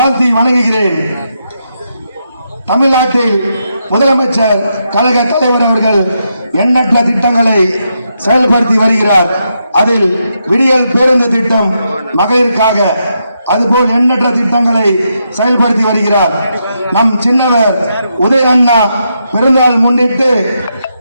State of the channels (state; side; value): inverted; both; correlation -0.82